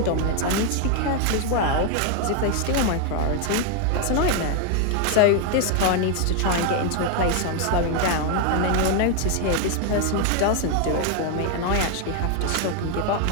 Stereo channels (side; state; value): both; different; correlation 0.01